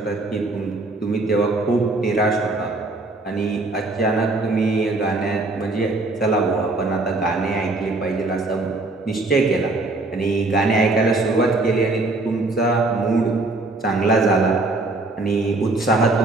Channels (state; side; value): quieter; left; 3.1 dB